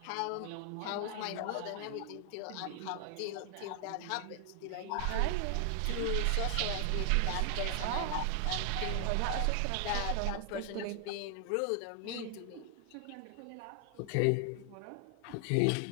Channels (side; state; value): both; different; correlation 0.00